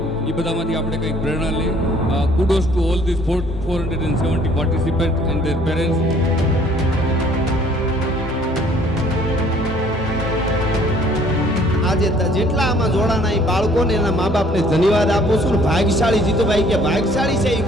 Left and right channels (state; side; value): normal; both; correlation 0.58